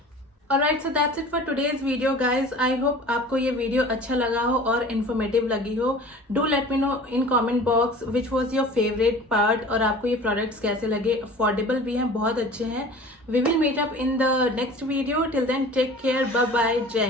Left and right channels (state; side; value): normal; both; correlation 0.42